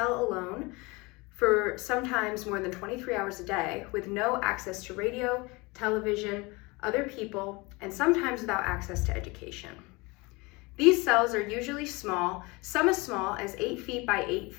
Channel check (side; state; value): right; quieter; 25.3 dB